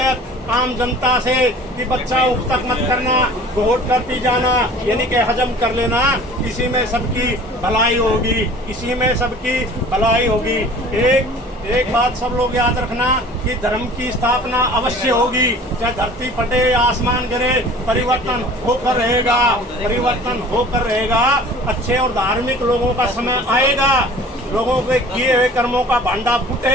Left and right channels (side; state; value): both; normal; correlation 0.46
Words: आम जनता से कि बच्चा उठ तक मत करना, घोट कर पी जाना, यानी कि हजम कर लेना, इसी में सबकी भलाई होगी, इसी में सबकी भलाई होगी। एक बात सब लोग याद रखना कि धर्म की स्थापना अवश्य होगी, चाहे धरती फटे या आसमान गिरे, परिवर्तन होकर रहेगा, परिवर्तन होकर रहेगा। अच्छे और धार्मिक लोगों का समय आएगा, लोगों के किए हुए कर्मों का भांडा